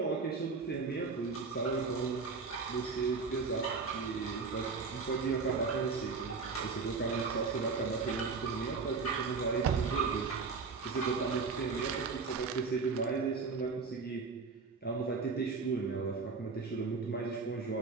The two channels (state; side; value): quieter; left; 4.7 dB